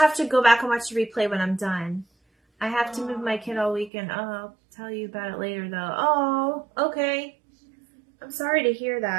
to go back and watch the replay when I'm done. I have to move my kid all weekend. Oh, I'll tell you about it later, though. Oh, okay. I'm sorry to hear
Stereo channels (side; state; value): left; drops out; at 3.9 s